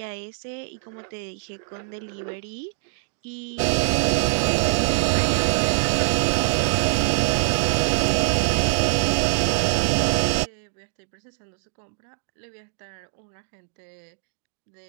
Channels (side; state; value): left; silent; digital silence